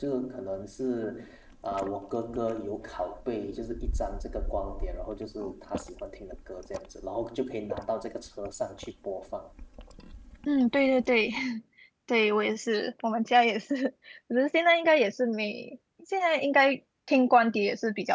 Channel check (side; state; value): both; identical; correlation 1.00